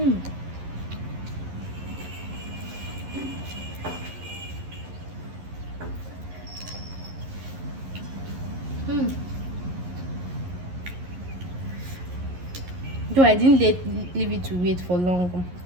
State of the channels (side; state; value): left; late; 11 ms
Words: Though I didn't leave it to wait for long